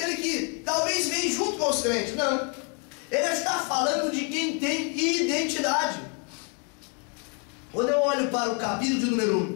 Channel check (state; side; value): quieter; right; 37.3 dB